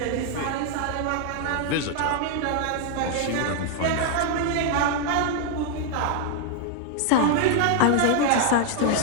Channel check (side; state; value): both; different; correlation 0.00